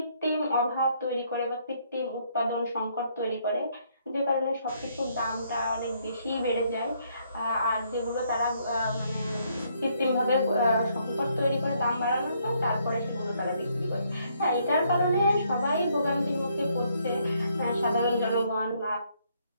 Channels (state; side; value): inverted; both; correlation -0.70